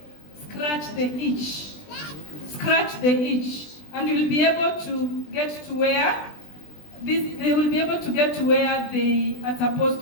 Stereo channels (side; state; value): right; late; 20 ms